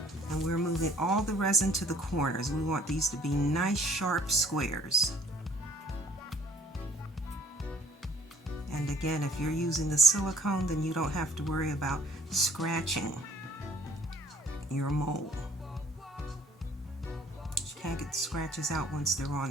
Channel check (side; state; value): both; normal; correlation 0.56